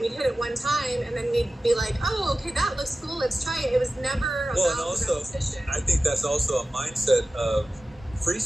hit it one time, and then we'd be like, oh, okay, that looks cool, let's try it. It was never Well, and about also, repetition. I think that's also a mindset of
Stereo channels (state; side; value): normal; both; correlation 0.95